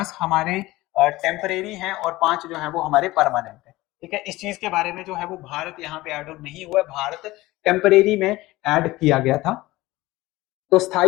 हमारे टेम्परेरी हैं और 5 जो है वो हमारे परमानेंट है। ठीक है, इस चीज के बारे में जो है वो भारत यहाँ पे ऐड ऑन नहीं हुआ है, भारत टेम्परेरी में ऐड किया गया था। तो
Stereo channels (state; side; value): quieter; right; 18.8 dB